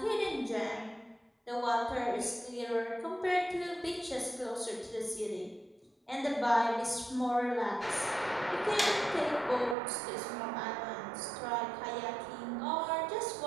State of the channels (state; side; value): drops out; left; at 9.8 s